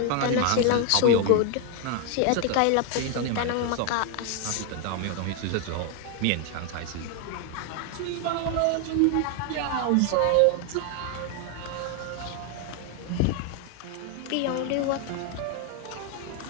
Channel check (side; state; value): both; different; correlation 0.01